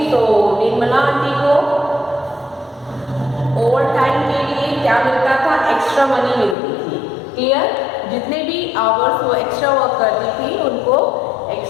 तो Nirmala aunty को over time के लिए क्या मिलता था, extra money मिलती थी. Clear? जितने भी आवर्स वो एक्स्ट्रा वर्क करती थी उनको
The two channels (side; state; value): right; drops out; at 6.6 s